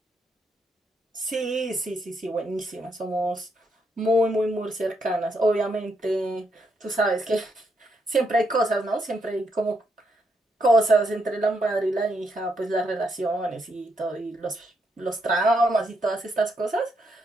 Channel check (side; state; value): both; normal; correlation 0.78